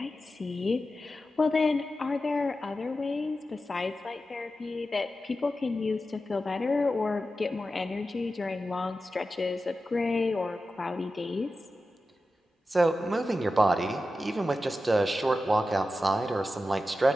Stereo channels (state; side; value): normal; both; correlation 0.92